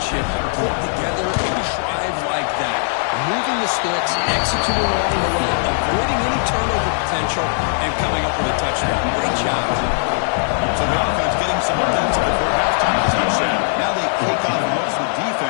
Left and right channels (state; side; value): silent; right; digital silence